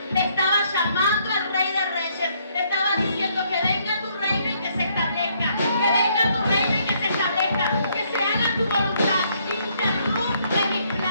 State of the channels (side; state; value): both; inverted; correlation -0.70